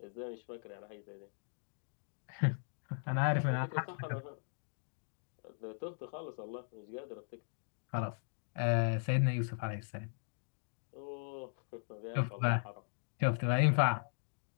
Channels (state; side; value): silent; right; digital silence